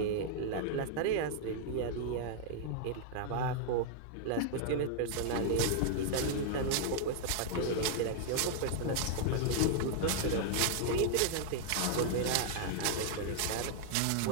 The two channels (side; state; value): both; different; correlation -0.01